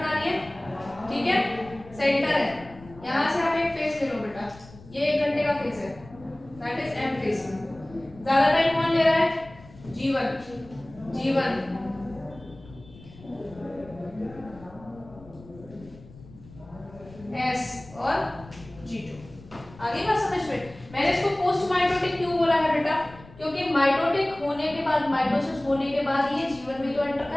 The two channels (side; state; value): left; noise; rumble, 20 dB below the sound